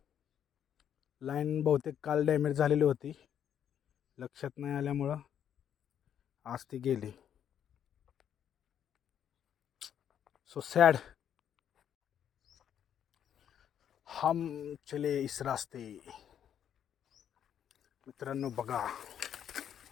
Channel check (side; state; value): right; quieter; 9.3 dB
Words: लाईन बहुतेक काल डॅमेज झालेली होती, लक्षात नाही आल्यामुळं आज ती गेली. So sad. हम चले इस रास्ते. मित्रांनो बघा